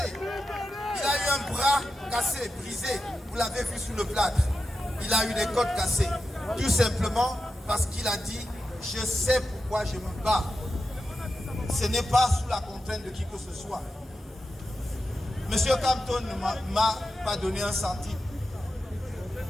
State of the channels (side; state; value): both; normal; correlation 0.90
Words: Il a eu un bras cassé, brisé. Vous l'avez vu sous le plâtre. Il a eu des côtes cassées. Tout simplement parce qu'il a dit « Je sais pourquoi je me bats ». Ce n'est pas sous la contrainte de qui que ce soit. Monsieur Campton ne m'a pas donné un centime.